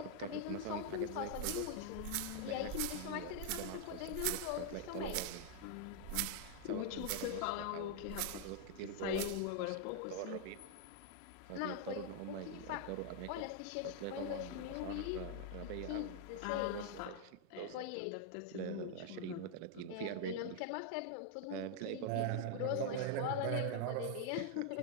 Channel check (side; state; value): both; different; correlation 0.00